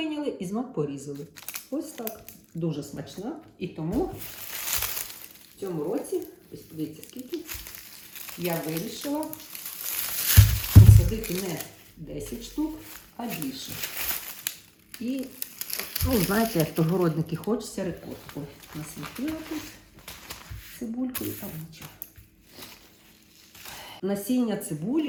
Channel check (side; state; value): both; identical; correlation 1.00